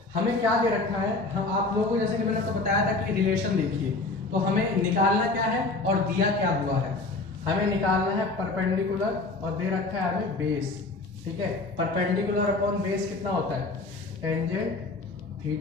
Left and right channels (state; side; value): quieter; right; 3.4 dB